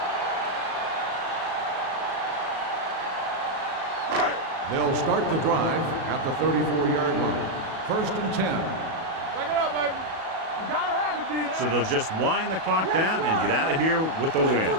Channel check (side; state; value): left; late; 37 ms